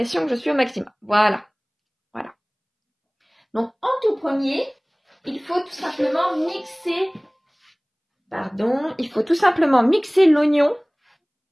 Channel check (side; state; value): both; identical; correlation 1.00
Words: que je suis au maximum. Voilà. Donc, en tout premier, il faut tout simplement mixer l'oignon.